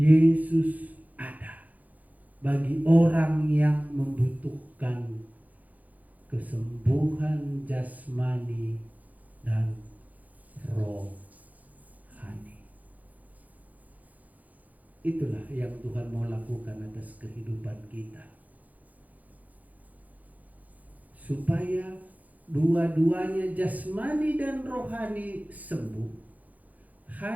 ada bagi orang yang membutuhkan kesembuhan jasmani dan rohani. Itulah yang Tuhan mau lakukan atas kehidupan kita, supaya dua-duanya jasmani dan rohani sembuh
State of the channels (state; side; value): late; left; 0.078 ms